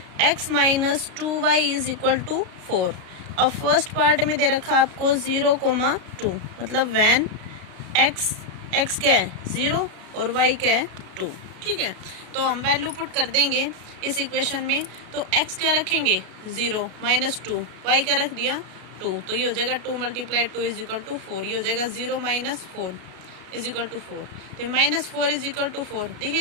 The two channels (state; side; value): late; left; 33 ms